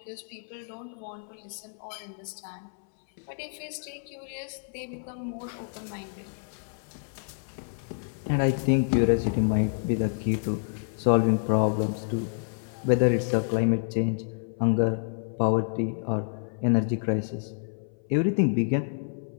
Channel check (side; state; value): right; silent; 59 dB below the other